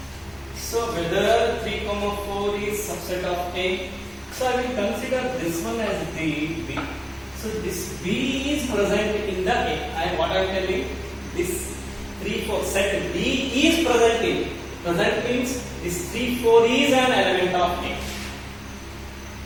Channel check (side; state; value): both; identical; correlation 1.00